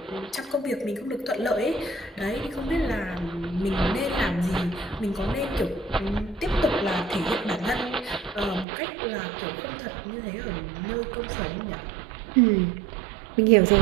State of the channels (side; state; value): left; drops out; at 8.7 s